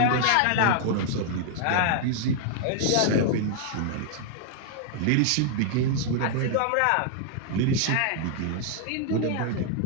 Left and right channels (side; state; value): both; different; correlation 0.00